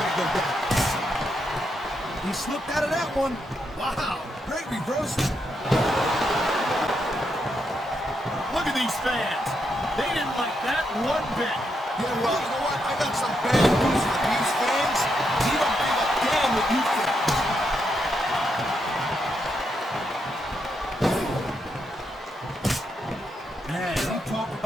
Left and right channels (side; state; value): both; normal; correlation 0.81